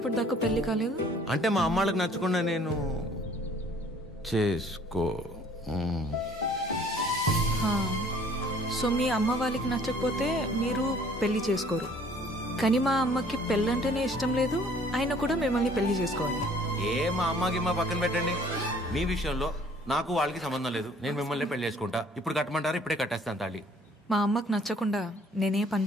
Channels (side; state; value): both; normal; correlation 0.56